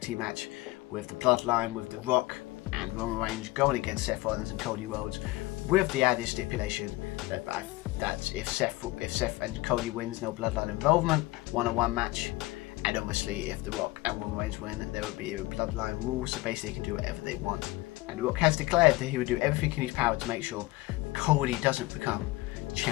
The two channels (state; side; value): quieter; right; 20.2 dB